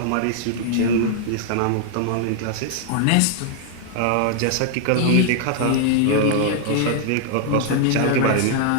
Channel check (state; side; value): different; both; correlation -0.01